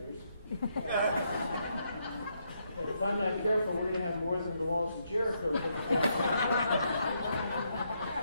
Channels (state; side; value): inverted; both; correlation -0.77